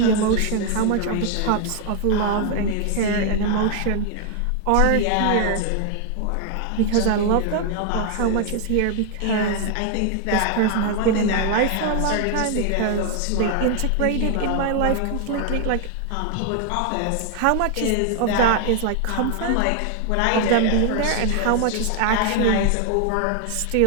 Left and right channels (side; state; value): both; different; correlation 0.00